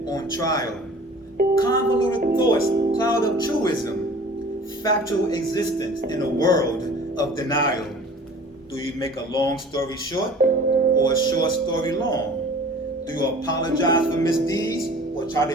on trial. Convoluted thoughts, cloud of truism, factual existence in a world of denial. Do you make a long story short or a short story long? Do you apologize for misdeeds or try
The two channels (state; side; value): normal; both; correlation 0.45